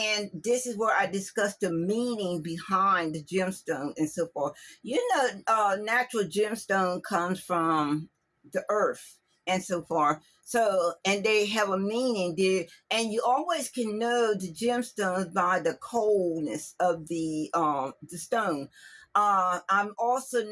this is where I discuss the meaning behind the gemstone and so forth. Natural gemstone comes from the earth and so forth. So, and they have a meaning there, and you always can know the gemstones by the coldness of the stone. I'm also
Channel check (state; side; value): identical; both; correlation 1.00